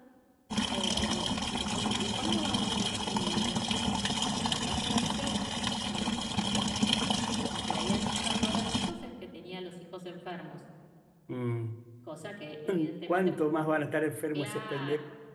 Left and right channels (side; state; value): both; identical; correlation 1.00